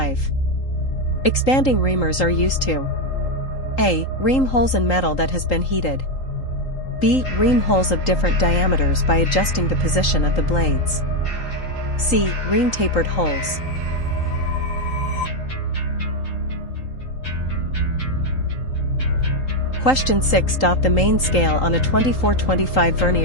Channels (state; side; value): late; right; 3.8 ms